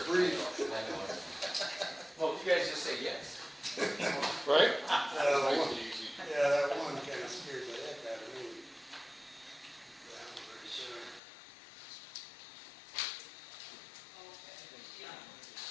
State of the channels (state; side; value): drops out; right; at 11.2 s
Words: brief. I know. Well, you guys just say yes. Right? Yeah, that one kind of scared the heck out of me. That one right there.